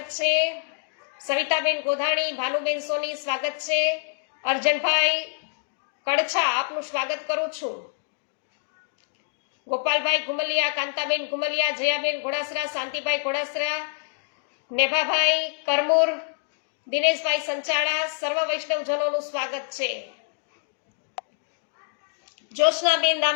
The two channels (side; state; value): right; silent; digital silence